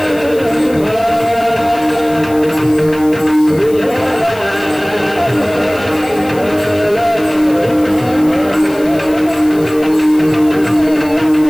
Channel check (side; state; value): left; noise; hiss, 20 dB below the sound